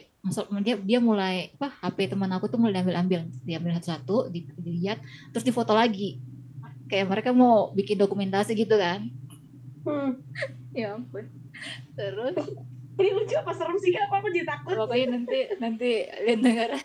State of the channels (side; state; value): both; identical; correlation 1.00